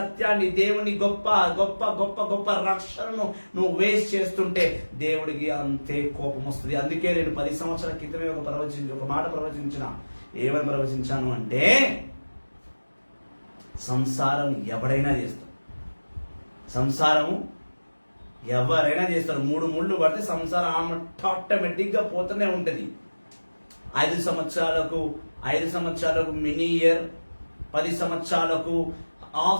దేవుని గొప్ప గొప్ప గొప్ప గొప్ప రక్షణను నువ్వు వేస్ట్ చేస్తుంటే దేవుడికి అంతే కోపం వస్తుంది. అందుకే నేను 10 సంవత్సరాల క్రితమే ఒక మాట ప్రవచించిన. ఏమని ప్రవచించాను అంటే, సంసారం ఎవరైనా చేస్తాడు. సంసారము ఎవరైనా చేస్తారు. 3 ముళ్ళు పడితే సంసారం ఆటోమేటిక్ గా పోతూనే ఉంటది. 5 సంవత్సరాలకు మినీ ఇయర్, 10 సంవత్సరాలకు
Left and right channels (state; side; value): inverted; both; correlation -1.00